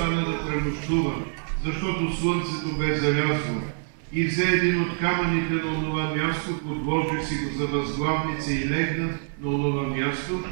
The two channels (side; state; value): left; silent; digital silence